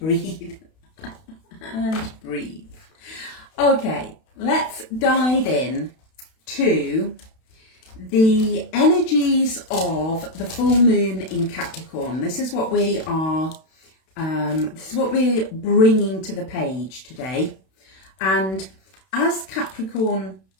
And breathe. Okay, let's dive in to the energies of the full moon in Capricorn. This is what we are, this is what we're bringing to the page today. And as Capricorn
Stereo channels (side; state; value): right; late; 32 ms